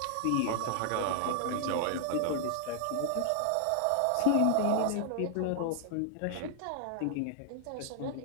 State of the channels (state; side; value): different; both; correlation 0.00